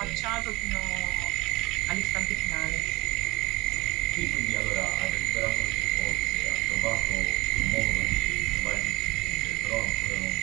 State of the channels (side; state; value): left; quieter; 21.9 dB